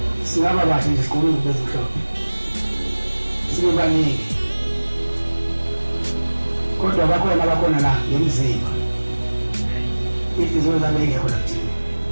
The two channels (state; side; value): inverted; both; correlation -1.00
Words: singaba bahle nje siqhubeke bezimhlophe sibe baningi kodwa bakhona la ngemizimba izinto zabe ngekho la kuthina